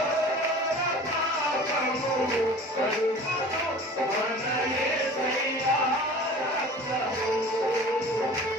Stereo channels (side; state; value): both; normal; correlation 0.42